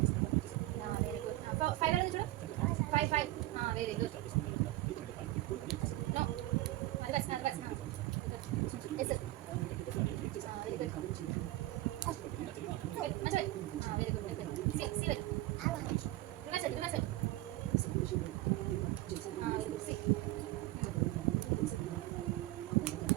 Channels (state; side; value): quieter; left; 17.0 dB